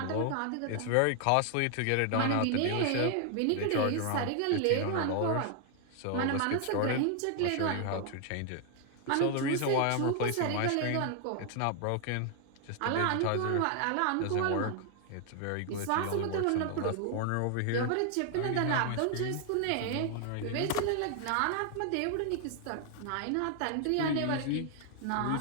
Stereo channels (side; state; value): both; different; correlation 0.00